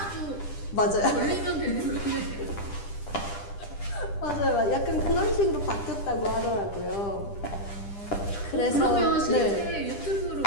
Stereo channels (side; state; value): right; late; 10 ms